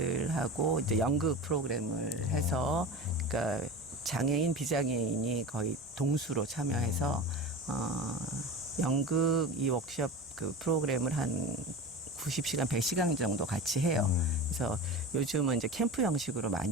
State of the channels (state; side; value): normal; both; correlation 0.31